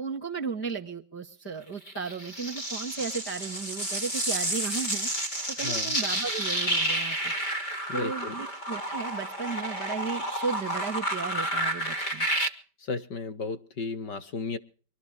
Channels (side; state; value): right; late; 5.1 ms